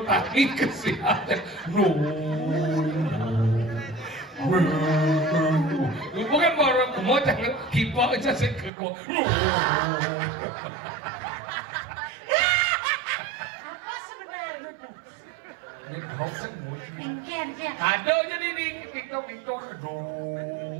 tadi kesihatan. Bukan baru mau jangan kipa aja sih keko. Ini hoax ada jadi di Tik Tok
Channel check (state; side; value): drops out; left; at 8.7 s